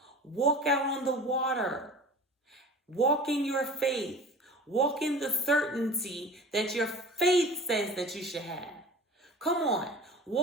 Walk out on the water. Walk in your faith. Walk in the certainty that your faith says that you should have. Come on.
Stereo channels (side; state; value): both; normal; correlation 0.39